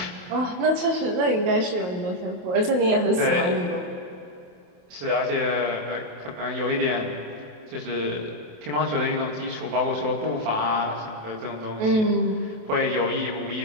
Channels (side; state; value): left; late; 28 ms